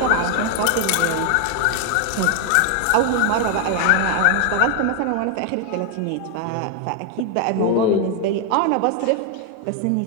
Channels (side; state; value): both; different; correlation 0.01